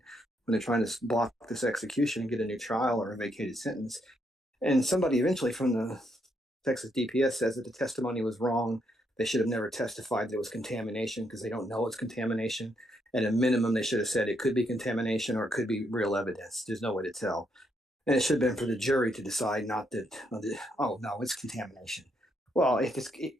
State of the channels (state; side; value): normal; both; correlation 0.76